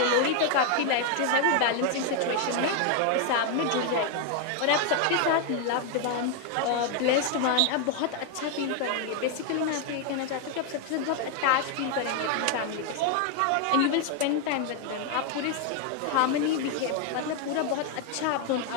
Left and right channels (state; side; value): different; both; correlation 0.01